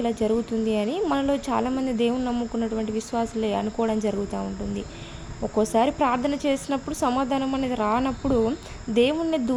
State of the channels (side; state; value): both; identical; correlation 1.00